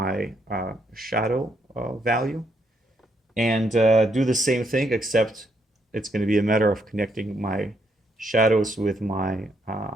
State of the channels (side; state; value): both; normal; correlation 0.75